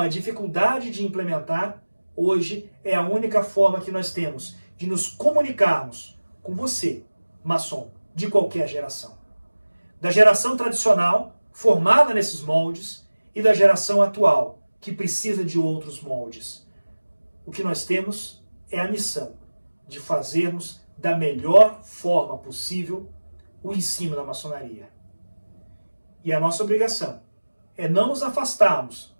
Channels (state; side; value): inverted; both; correlation -1.00